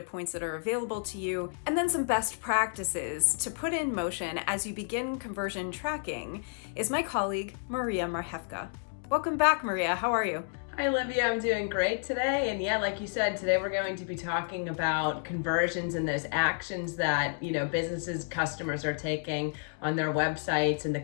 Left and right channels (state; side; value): silent; right; digital silence